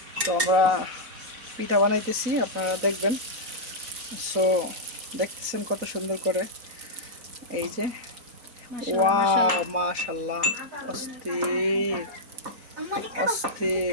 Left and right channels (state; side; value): late; left; 4.0 ms